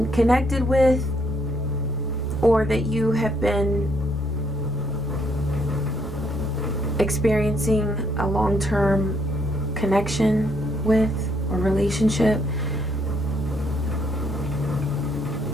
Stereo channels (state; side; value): normal; both; correlation 0.70